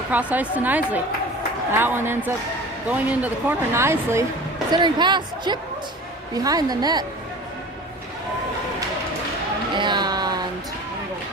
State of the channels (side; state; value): both; normal; correlation 0.39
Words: across ice to Knisley. That one ends up going into the corner. Knisley, centering pass, chipped behind the net. And